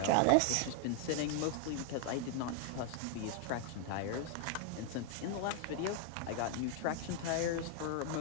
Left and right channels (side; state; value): both; different; correlation 0.00